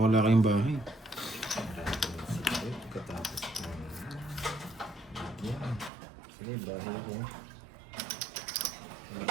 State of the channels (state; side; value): drops out; left; at 5.9 s